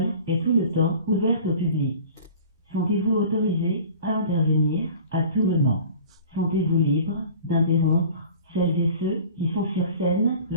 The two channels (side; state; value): both; inverted; correlation -0.43